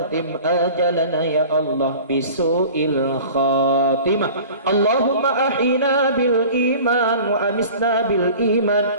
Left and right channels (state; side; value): inverted; both; correlation -0.42